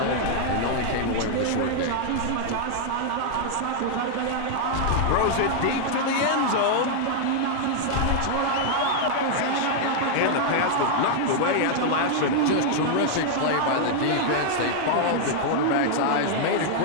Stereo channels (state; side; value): different; both; correlation 0.00